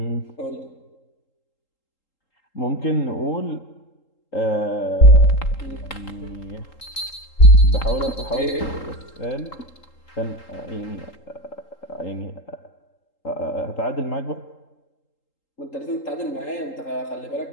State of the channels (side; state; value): right; late; 3.8 ms